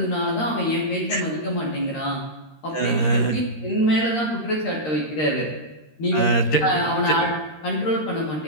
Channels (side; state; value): right; late; 13 ms